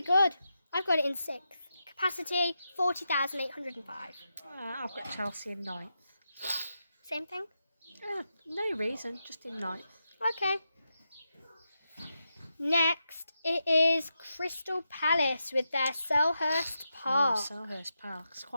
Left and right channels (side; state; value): both; inverted; correlation -0.87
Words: good. I've got it in 6th. Capacity, 40,805. I've got Chelsea in 9th. Same thing? No reason, just in 9th. Okay. Next, it is Crystal Palace with their Selhurst Park. Selhurst Park. It's